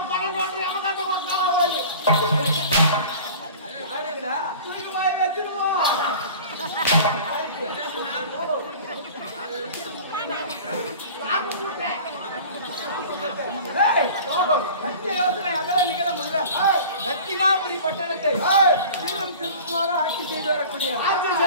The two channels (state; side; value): inverted; both; correlation -0.41